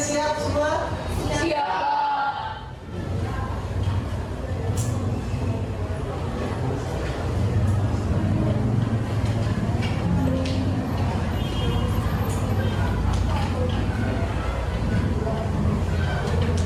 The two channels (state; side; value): identical; both; correlation 1.00